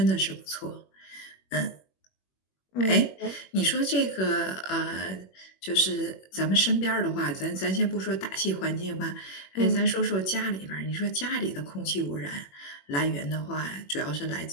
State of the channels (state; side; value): late; right; 21 ms